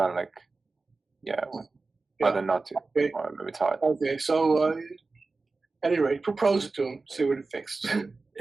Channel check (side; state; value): left; quieter; 3.7 dB